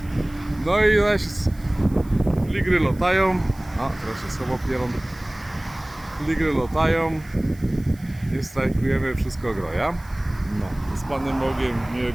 No i zaś fligry latają, a teraz się słowo pierą, fligry latają, nie strajkujemy, wszystko groja. No, z Panem Bogiem,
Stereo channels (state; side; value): noise; right; hiss, 25 dB below the sound